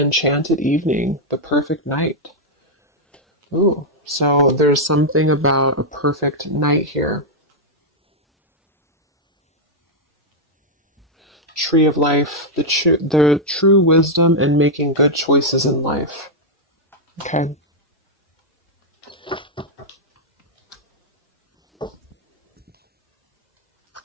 evening, the perfect night. Ooh, so there's something about a perfect night here. Tree of Life, the true wisdom and making good choices in life. Okay.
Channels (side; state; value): both; normal; correlation -0.03